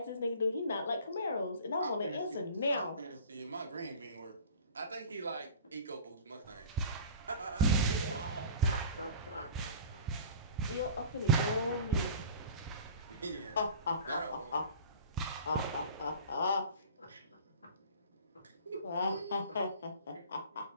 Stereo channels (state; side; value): inverted; both; correlation -0.41